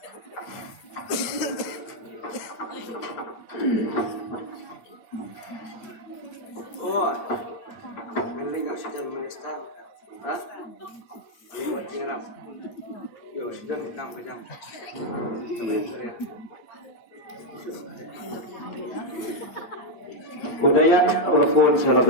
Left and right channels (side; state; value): right; late; 8.8 ms